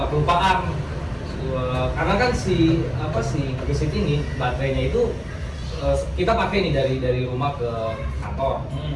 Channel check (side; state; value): both; identical; correlation 1.00